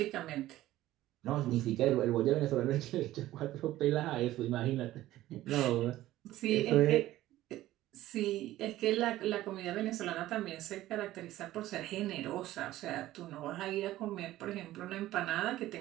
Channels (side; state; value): left; quieter; 15.2 dB